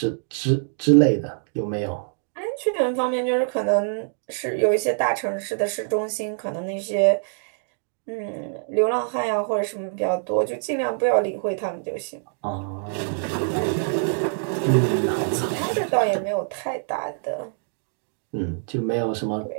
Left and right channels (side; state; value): left; silent; digital silence